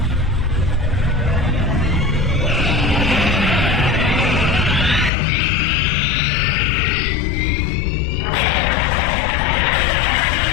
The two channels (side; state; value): right; drops out; at 5.1 s